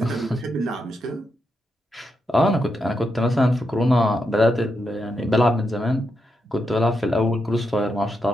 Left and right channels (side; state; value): both; normal; correlation 0.84